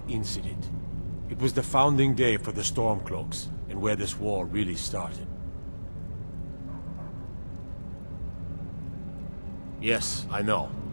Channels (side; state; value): both; inverted; correlation -1.00